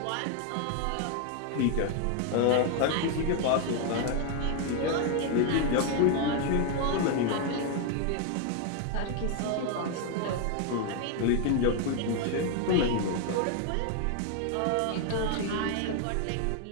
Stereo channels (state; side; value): different; both; correlation 0.01